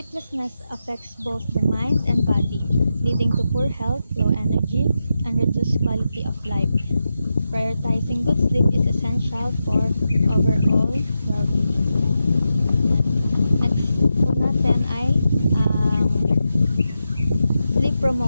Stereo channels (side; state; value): both; inverted; correlation -0.88